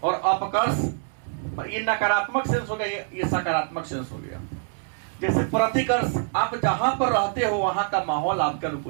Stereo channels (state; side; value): silent; left; digital silence